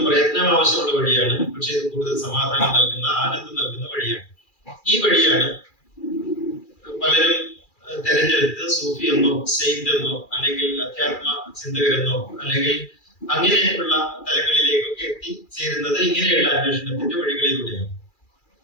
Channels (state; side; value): late; right; 2.4 ms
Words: പ്രയത്നം ആവശ്യമുള്ള വഴിയാണ്. പക്ഷെ ഇത് കൂടുതൽ സമാധാനം നൽകുന്ന, ആനന്ദം നൽകുന്ന വഴിയാണ്. ഈ വഴിയാണ് പലരും തെരഞ്ഞെടുത്ത് സൂഫി എന്നോ, സെയിന്റ് എന്നോ, അല്ലെങ്കിൽ അധ്യാത്മ ചിന്തകരെന്നോ, അല്ലെങ്കിൽ അങ്ങനെയുള്ള തലങ്ങളിലേക്കൊക്കെ എത്തിച്ചേരുന്നത് ഇങ്ങനെയുള്ള അന്വേഷണത്തിന്റെ വഴികളിലൂടെയാണ്.